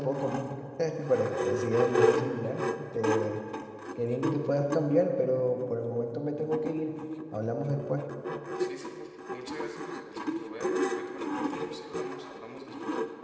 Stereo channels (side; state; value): both; identical; correlation 1.00